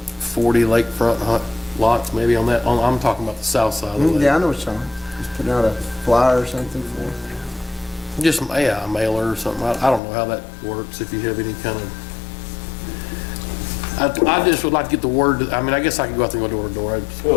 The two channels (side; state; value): right; drops out; at 10.0 s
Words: lakefront lots maybe on that, I'm talking about the south side of the lake. Yeah, I know what you're talking about. Just putting out a flyer or something for it. Just, a mailer or something. I don't know how that works, if you have any kind of, I just would like to get the word, I mean, I guess I could go out there and go door to door. That's